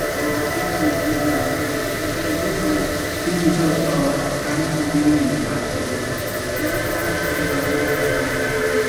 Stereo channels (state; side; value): identical; both; correlation 1.00